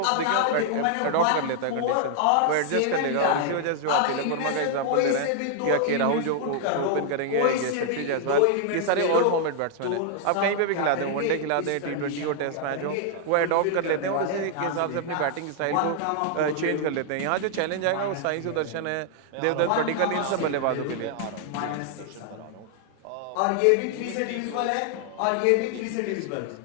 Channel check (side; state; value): both; different; correlation 0.00